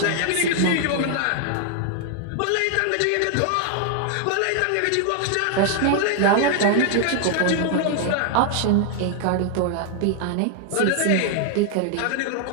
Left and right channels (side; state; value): both; different; correlation 0.00